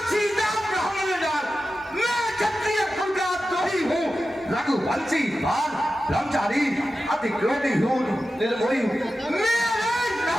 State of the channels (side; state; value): both; normal; correlation 0.93